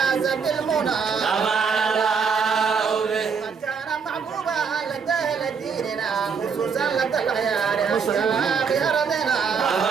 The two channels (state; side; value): quieter; left; 5.9 dB